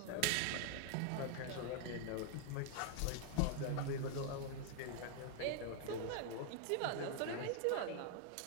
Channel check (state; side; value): different; both; correlation 0.00